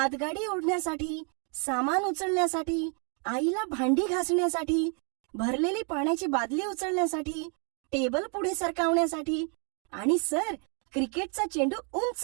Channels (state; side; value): quieter; left; 39.3 dB